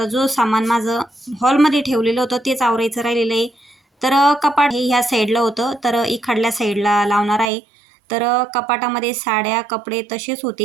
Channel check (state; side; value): drops out; left; at 7.5 s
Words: जो सामान माझं हॉलमध्ये ठेवलेलं होतं तेच आवरायचं राहिलेलं आहे. तर कपाट हे ह्या साईडला होतं, तर इकडल्या साईडला लावणार आहे. तर कपाटामध्ये साड्या, कपडे तसेच